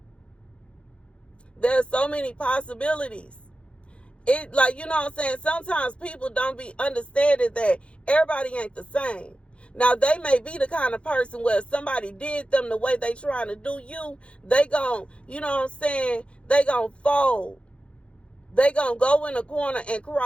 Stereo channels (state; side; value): late; right; 0.059 ms